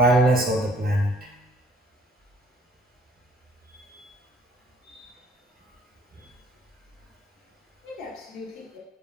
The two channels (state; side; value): normal; both; correlation 0.58